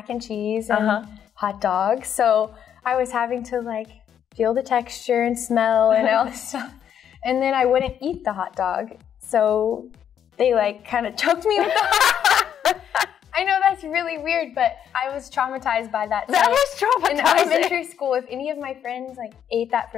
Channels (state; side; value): quieter; right; 9.1 dB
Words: and cheese and hot dogs. So I was having to like feel the texture and smell and all this stuff. And then I wouldn't eat the hot dog. So they like kind of choked me with the hot dog. I know that's really weird, but I was traumatized by that. That was traumatizing. In elementary school, if any of my friends like ate that